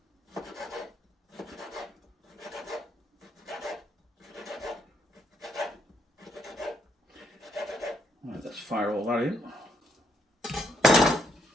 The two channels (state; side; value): normal; both; correlation 0.75